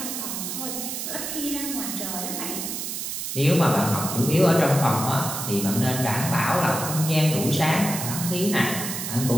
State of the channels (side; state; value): right; noise; hiss, 5 dB below the sound